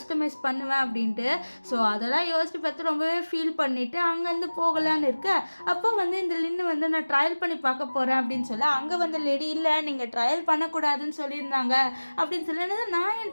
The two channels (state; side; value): inverted; both; correlation -1.00